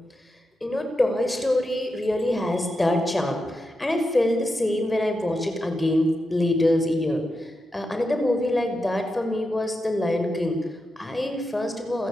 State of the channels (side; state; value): both; normal; correlation 0.88